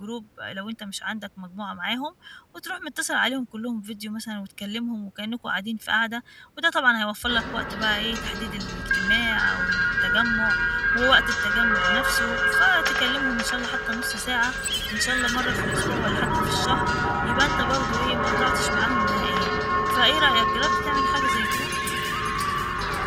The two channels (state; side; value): identical; both; correlation 1.00